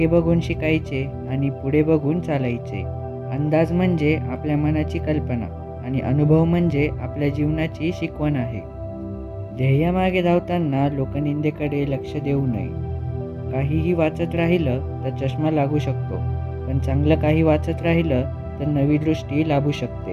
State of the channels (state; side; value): identical; both; correlation 1.00